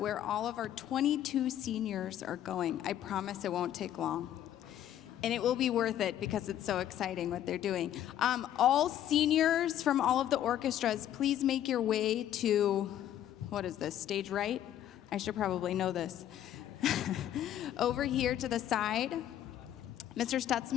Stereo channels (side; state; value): right; quieter; 11.3 dB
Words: all of our 22 seniors are going. I promise it won't take long. And it will be worth it because it's so exciting what they're doing. All seniors from all of the orchestras, please make your way to, what is this, stage right? I should probably know this. Over here to the side, Mr.